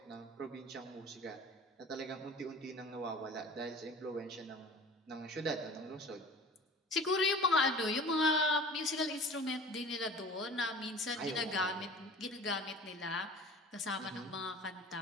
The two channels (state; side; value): normal; both; correlation 0.41